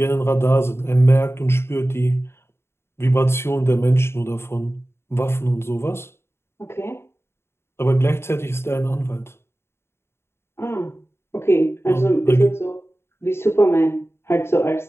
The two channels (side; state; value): right; late; 0.12 ms